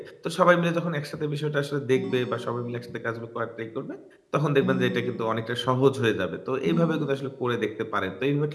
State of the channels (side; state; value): both; identical; correlation 1.00